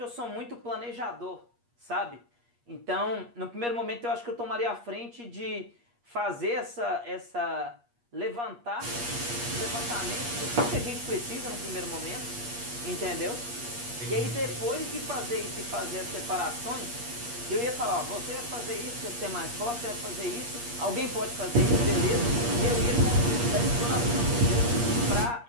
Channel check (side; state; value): left; late; 8.4 ms